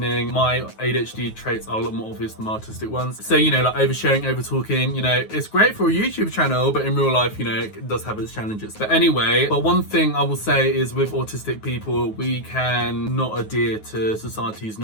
My ADHD traits are a lot more obvious than my autistic ones. So, like oversharing, over talking, it's great for a YouTube channel, but in real life, it does have its challenges. But anyway, one thing I will say is with autistic people, we can not adhere to society's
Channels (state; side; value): late; right; 9.4 ms